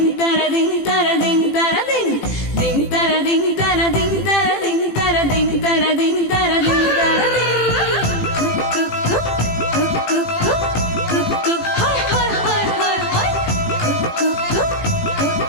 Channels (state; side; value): late; right; 18 ms